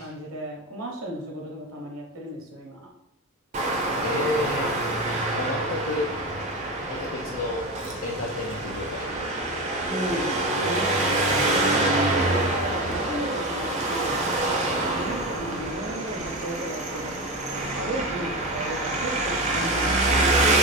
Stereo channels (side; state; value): both; normal; correlation 0.20